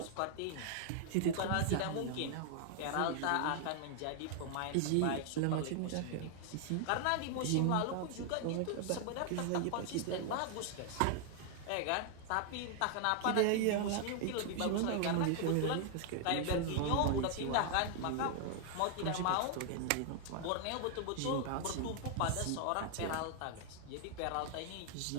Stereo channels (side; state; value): both; different; correlation 0.00